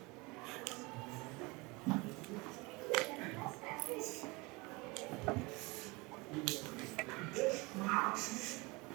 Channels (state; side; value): quieter; left; 25.6 dB